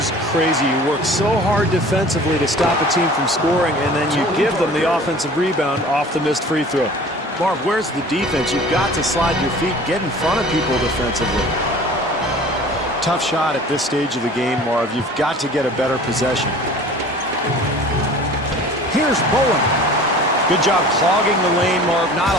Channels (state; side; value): normal; both; correlation 0.44